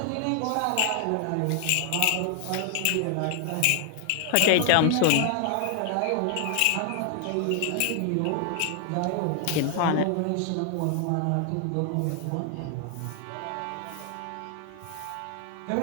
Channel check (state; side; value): different; both; correlation 0.00